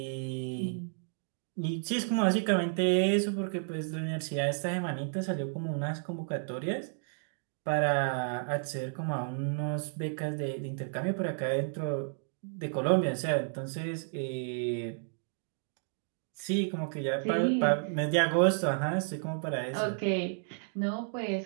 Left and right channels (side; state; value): left; silent; digital silence